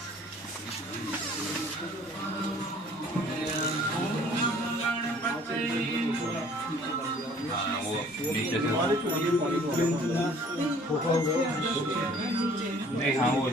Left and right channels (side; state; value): both; normal; correlation 0.54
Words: हाँ वो नीचे से नहीं, हाँ वो